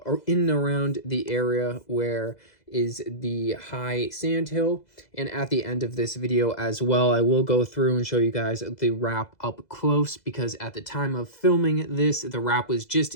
in and around the area where is the high sand hill. And at the end of this video as well, I will go through and show you guys the wrap up close, because at the time of filming this, the wrap was just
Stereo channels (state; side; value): late; right; 2.0 ms